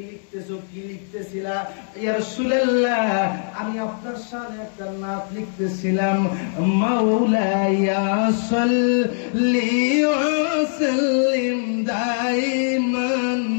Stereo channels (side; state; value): right; silent; digital silence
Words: লিখতেছো, কি লিখতেছিলা? ইয়া রাসূলুল্লাহ, আমি আপনার শানে একটা নাত লিখতেছিলাম, মাওলায়া সাল্লি ওয়া সাল্লিম দাইমান